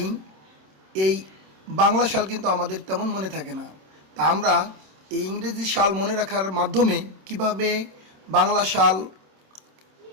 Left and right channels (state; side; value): late; left; 26 ms